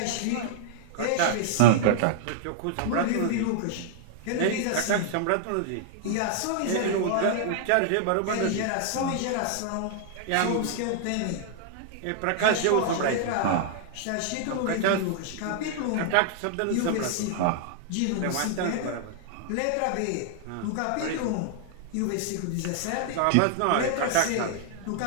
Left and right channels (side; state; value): both; different; correlation -0.01